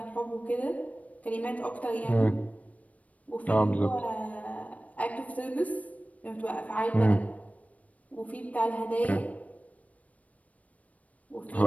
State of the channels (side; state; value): right; late; 0.068 ms